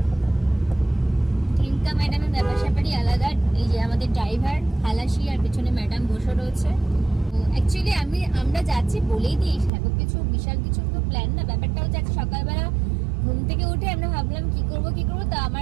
ঢেঙ্কা ম্যাডামের ব্যাপার স্যাপারই আলাদা। এই যে আমাদের ড্রাইভার খালাসি, আর পেছনে ম্যাডাম বসে রয়েছে। অ্যাকচুয়ালি আমরা যাচ্ছি বলেই দিই, সেরকম কিছু বিশাল কিছু তো প্ল্যান না। ব্যাপারটা হচ্ছে সকালবেলা ঘুম থেকে উঠে আমরা ভাবলাম কি করব। তো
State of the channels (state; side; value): drops out; left; at 9.7 s